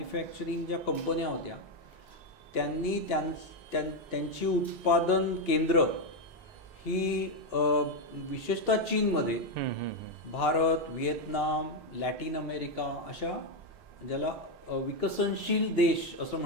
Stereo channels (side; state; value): both; normal; correlation 0.05